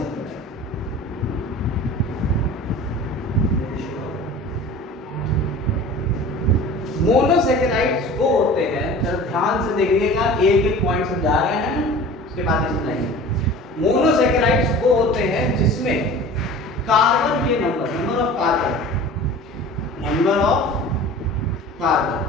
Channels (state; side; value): normal; both; correlation 0.40